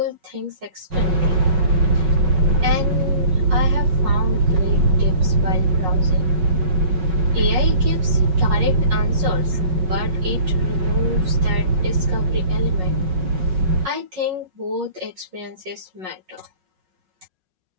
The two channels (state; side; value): late; left; 5.4 ms